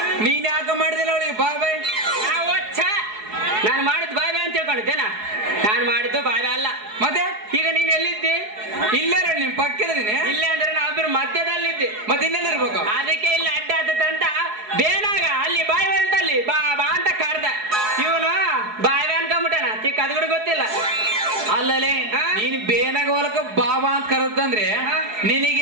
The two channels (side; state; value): left; late; 4.7 ms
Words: ನೀನ್ ಯಾಕ ಮಾಡಿದಿಲ್ಲ ಅವಳಿಗೆ ಬಾಯ್ ಬಾಯ್. ನಾನು ಮಾಡಿದ್ದು ಬಾಯ್ ಬಾಯ್ ಅಂತ ತಿಳ್ಕೊಂಡಿದ್ದೇನಾ? ನಾನು ಮಾಡಿದ್ದು ಬಾಯ್ ಬಾಯ್ ಅಲ್ಲ. ಮತ್ತೆ ಈಗ ನೀನ್ ಎಲ್ಲಿದ್ದಿ? ಇಲ್ಲೇ ನಿನ್ ಪಕ್ಕದೀನಿ. ಇಲ್ಲೇ ಅಂದ್ರೆ ನಾವಿಬ್ರು ಮಧ್ಯದಲ್ಲಿದ್ದಿ. ಮತ್ತೆ ಇನ್ನೆಲ್ಲಿರ್ಬೇಕು? ಅದಕ್ಕೆ ಇಲ್ಲಿ ಅಡ್ಡ ಆತಂತ ಬೇನಾಗ ಅಲ್ಲಿ ಬಾಯ್ ಬಾಯ್ ಅಂತ ಅಲ್ಲಿ ಬಾ ಬಾ ಅಂತ ಕರ್ದ. ಇವನು ಬಾಯ್ ಬಾಯ್ ಅನ್ಕೊಂಡ್ಬಿಟ್ಟಾನ, ತಿಕ್ಕ ಅದು ಕೂಡ ಗೊತ್ತಿಲ್ಲ. ಅಲ್ಲಲ್ಲಿ ನೀನ್ ಬೇನಾಗ ಹೊಲಕ ಬಾಬಾ ಅಂತ ಕರೆದಂದ್ರೆ